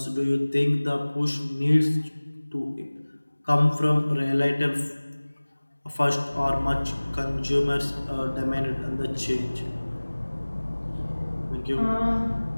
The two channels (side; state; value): both; inverted; correlation -1.00